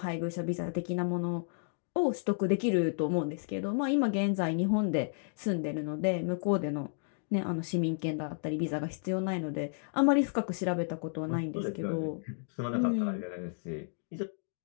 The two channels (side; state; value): right; silent; digital silence